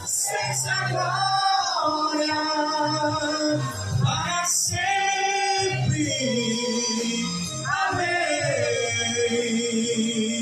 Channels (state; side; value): identical; both; correlation 1.00